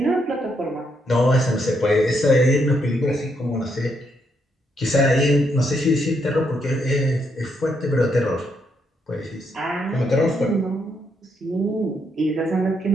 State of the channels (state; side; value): normal; both; correlation 0.76